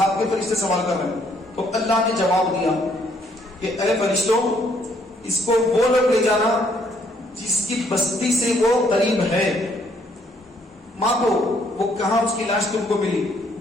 کے فرشتے سوال کر رہے ہیں. تو اللہ نے جواب دیا کہ اے فرشتوں, اس کو وہ لوگ لے جانا جس کی بستی سے وہ قریب ہے. ماپو وہ کہاں اس کی لاش تم کو ملی,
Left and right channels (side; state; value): both; normal; correlation 0.68